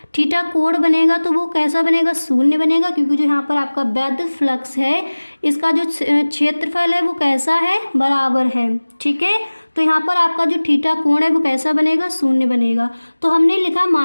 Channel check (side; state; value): both; inverted; correlation -1.00